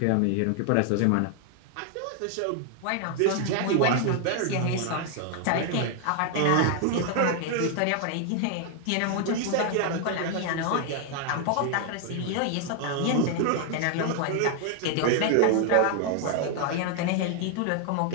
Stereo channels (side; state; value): both; different; correlation 0.00